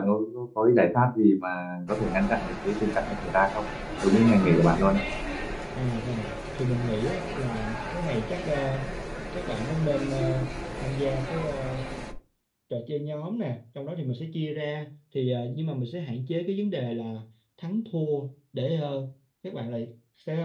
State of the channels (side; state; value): both; identical; correlation 1.00